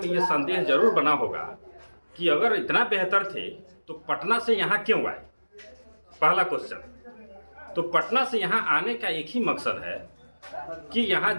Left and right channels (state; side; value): inverted; both; correlation -1.00